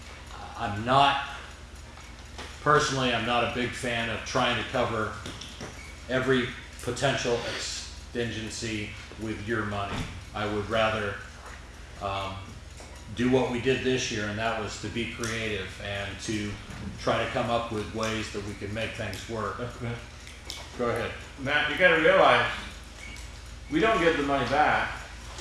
Personally, I'm not a big fan of trying to cover every potential contingency with your money. I would rather do what we did this year, and that was to be creative and to try to come up with ways that we can make things work. Okay. Go ahead. Matt, you gotta realize, we don't give the money back,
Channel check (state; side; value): identical; both; correlation 1.00